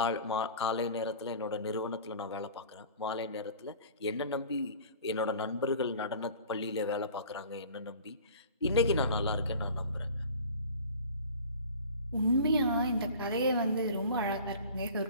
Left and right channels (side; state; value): both; inverted; correlation -0.42